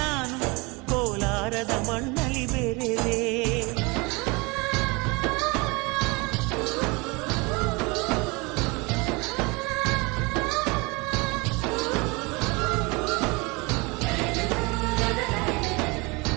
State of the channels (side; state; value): left; quieter; 27.0 dB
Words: ನಾನು ಕೋಲಾರದ ಮಣ್ಣಲ್ಲಿ ಬೆರೆವೆ.